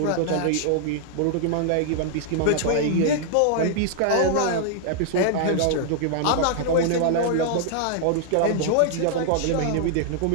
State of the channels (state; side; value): different; both; correlation -0.01